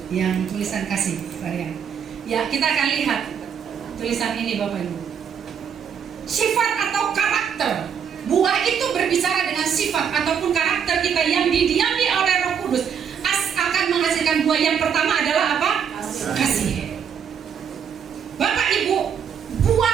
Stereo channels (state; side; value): quieter; left; 7.6 dB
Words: yang tulisan kasih varian. Ya, kita akan lihat tulisan ini Bapak Ibu. Sifat atau karakter. Buah itu berbicara dengan sifat ataupun karakter kita yang didiami oleh Roh Kudus akan menghasilkan buah. Yang pertama adalah apa? Kasih. Bapak Ibu,